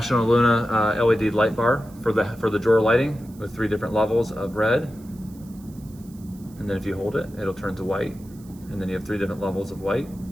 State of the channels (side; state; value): right; noise; hiss, 26 dB below the sound